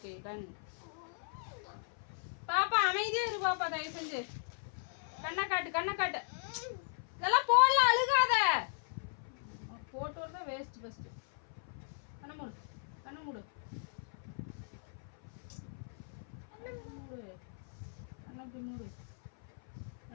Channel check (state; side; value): silent; right; 53 dB below the other